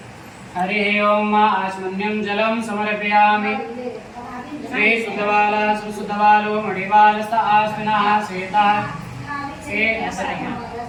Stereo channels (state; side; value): identical; both; correlation 1.00